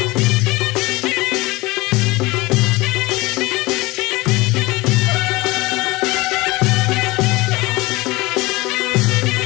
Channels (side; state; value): right; quieter; 21.8 dB